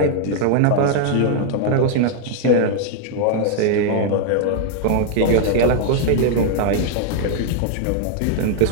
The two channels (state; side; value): different; both; correlation 0.00